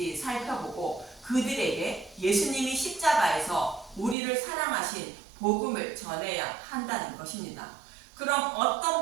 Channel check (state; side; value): drops out; left; at 4.2 s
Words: 살펴보고 그들에게 예수님이 십자가에서 우리를 사랑하신 복음을 전해야 한다는 것입니다. 그럼 어떤